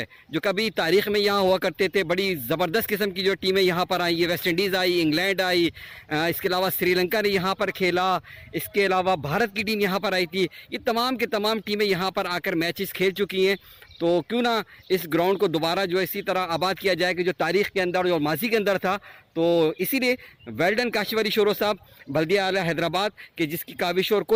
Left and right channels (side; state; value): both; identical; correlation 1.00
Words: जो कभी तारीख़ में यहाँ हुआ करते थे, बड़ी ज़बरदस्त किस्म की जो टीमें यहाँ पर आई है, वेस्ट इंडीज़ आई, इंग्लैंड आई, इसके अलावा श्रीलंका ने यहाँ पर खेला, इसके अलावा भारत की टीम यहाँ पर आई थी, ये तमाम के तमाम टीमें यहाँ पर आकर मैचेस खेल चुकी हैं। तो क्यों ना इस ग्राउंड को दोबारा जो है इसी तरह आबाद किया जाए कि जो तारीख़ के अंदर और माजी के अंदर था। तो इसीलिए well done Kashif Ali sorrow साहब, बल्दिया आला हैदराबाद, कि जिसकी काविशों और